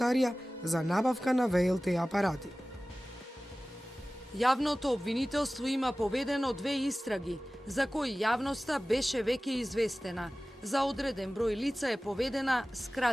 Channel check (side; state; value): both; normal; correlation 0.97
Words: за набавка на ВЛТ апарати. Јавното обвинителство има поведено 2 истраги, за кои јавноста беше веќе известена. За одреден број лица е поведена